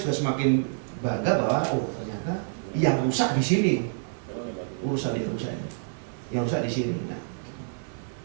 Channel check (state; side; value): silent; left; digital silence